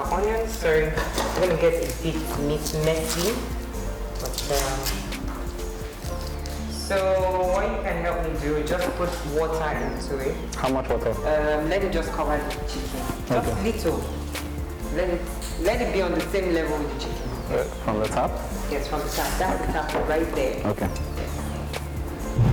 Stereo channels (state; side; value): identical; both; correlation 1.00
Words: onions. Sorry, I'm going to get a bit messy. But, so what you can help me do, just put water into it. How much water? Let it just cover the chicken. Just little. Let it be on the same level with the chicken. From the top? Yes, from the top. That's the top right there. Okay.